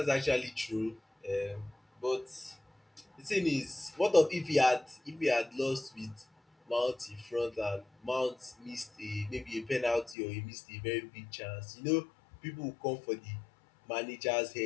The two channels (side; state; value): right; drops out; at 10.2 s